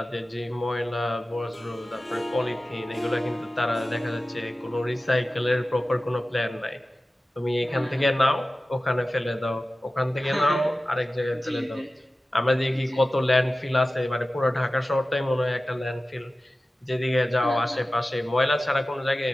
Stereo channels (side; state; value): both; normal; correlation 0.96